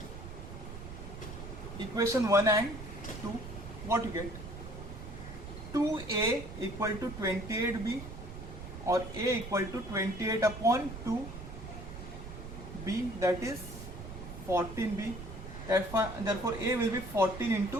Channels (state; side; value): noise; right; rumble, 10 dB below the sound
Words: equation 1 and 2. What you get? 2A equal to 28B, or A equal to 28 upon 2B, that is 14B. Therefore A will be 14